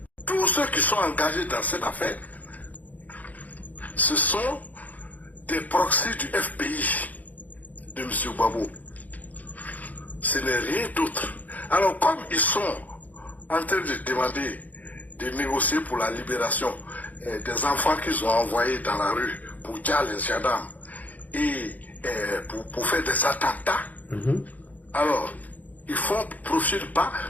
tous ceux qui sont engagés dans cette affaire, ce sont des proxys du FBI de M. Gbagbo. Ce n'est rien d'autre. Alors, comme ils sont en train de demander, de négocier pour la libération des enfants qu'ils ont envoyés dans la rue pour dire les gendarmes et pour faire des attentats, alors, ils font profil pas,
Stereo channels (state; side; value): late; right; 0.078 ms